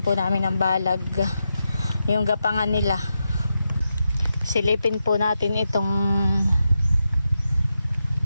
po namin ng balag. Yung gapangan nila. Silipin po natin itong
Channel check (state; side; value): inverted; both; correlation -0.87